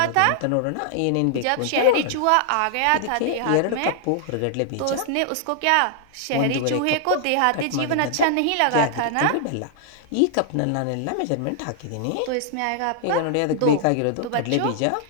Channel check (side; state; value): both; different; correlation 0.00